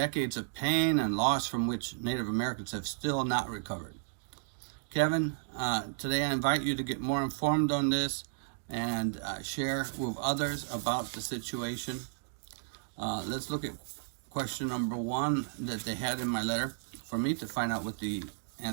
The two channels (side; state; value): left; silent; digital silence